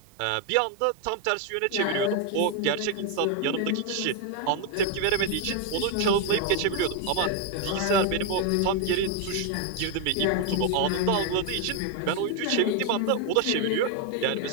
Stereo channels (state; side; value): different; both; correlation 0.01